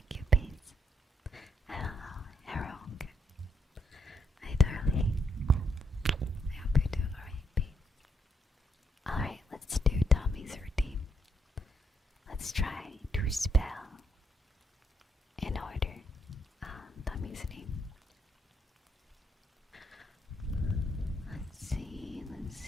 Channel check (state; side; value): normal; both; correlation 0.76